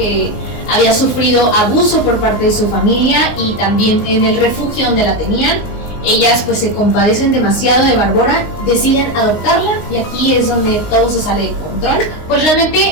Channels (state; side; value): late; right; 19 ms